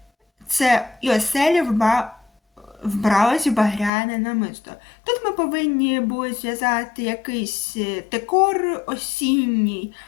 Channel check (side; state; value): right; drops out; at 3.9 s